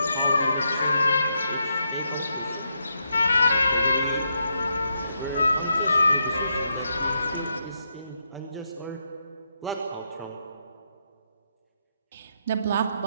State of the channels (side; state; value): both; inverted; correlation -0.80